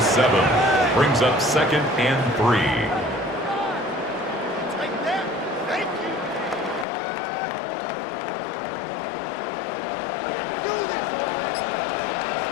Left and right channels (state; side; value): drops out; right; at 6.9 s